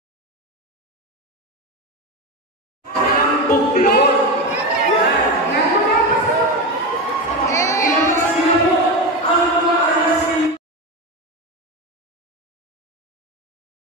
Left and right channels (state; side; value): normal; both; correlation 0.18